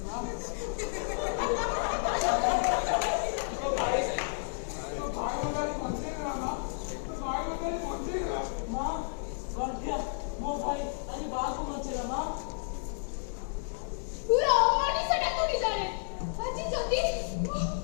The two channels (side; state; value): right; silent; digital silence